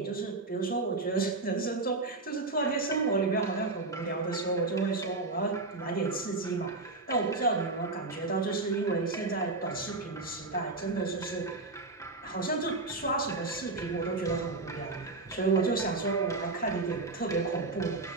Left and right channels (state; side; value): quieter; left; 3.3 dB